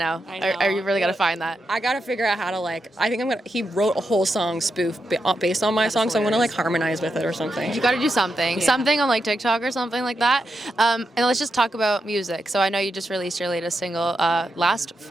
I really got to find that. I got to figure out how to like. I think he wrote a whole song spoof based on my song, so I'm gonna like harmonize with it or something. You got to do something, something on like TikTok or something like that. And let's just talk about music. So I know you just released your latest single last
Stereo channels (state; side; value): normal; both; correlation 0.86